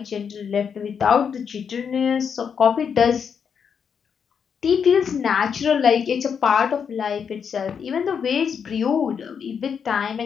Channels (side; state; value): right; quieter; 6.9 dB